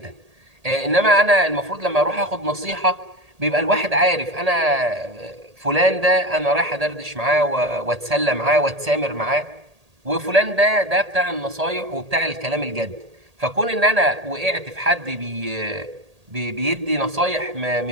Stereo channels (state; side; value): late; left; 1.8 ms